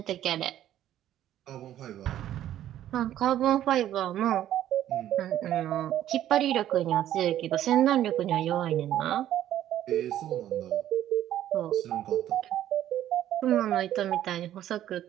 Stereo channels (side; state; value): left; quieter; 12.1 dB